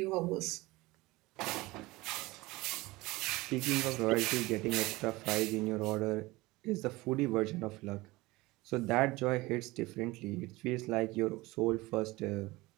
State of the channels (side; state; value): left; quieter; 20.9 dB